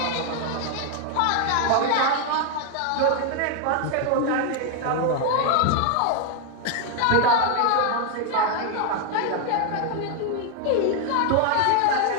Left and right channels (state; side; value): different; both; correlation 0.01